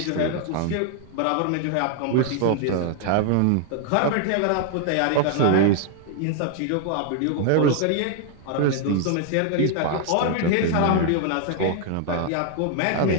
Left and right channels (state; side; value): different; both; correlation 0.00